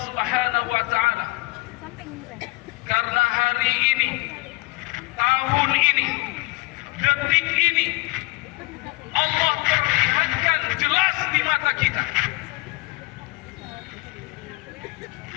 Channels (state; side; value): quieter; right; 24.1 dB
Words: Subhanahu wa taala karena hari ini, tahun ini, detik ini Allah perlihatkan jelas di mata kita